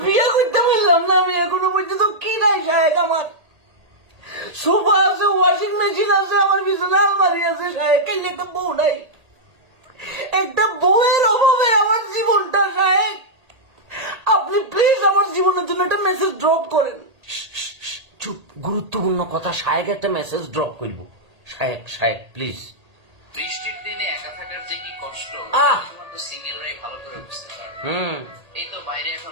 বিয়ে করতে বললাম না আমি, এখনো পর্যন্ত কি নাই সাহেব। আমার সোফা আছে, ওয়াশিং মেশিন আছে, আমার বিছানা আলমারি আছে সাহেব, কেন একটা বউ নাই? একটা বউয়ের অভাবে আমার জীবনটা সাহেব। আপনি প্লিজ আমার জীবনের জন্য একটা মেসেজ ড্রপ করেন। চুপ, গুরুত্বপূর্ণ কথা। শায়েক একটা মেসেজ ড্রপ করবো। শায়েক শায়েক প্লিজ। বৃষ্টির দিনে একা থাকার যে কি কষ্ট শুধুমাত্র সিঙ্গেলরাই ভালো করে বুঝতে পারবে। এই তো বাইরে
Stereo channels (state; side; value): late; left; 1.8 ms